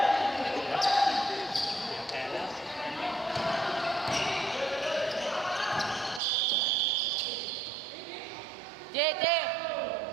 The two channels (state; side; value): drops out; left; at 6.2 s